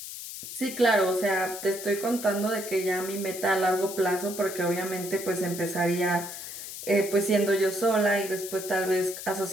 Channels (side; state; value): left; noise; hiss, 10 dB below the sound